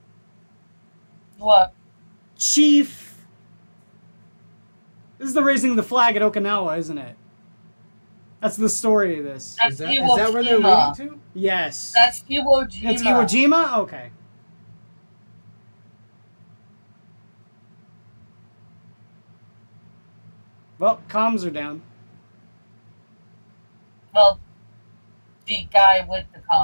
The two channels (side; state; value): both; inverted; correlation -1.00